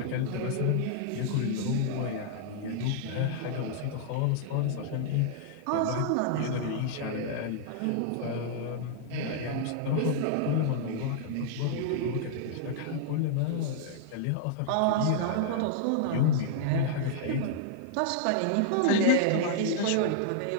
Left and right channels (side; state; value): both; different; correlation -0.01